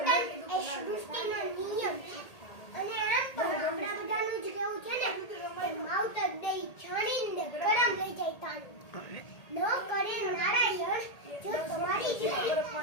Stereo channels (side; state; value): right; late; 1.8 ms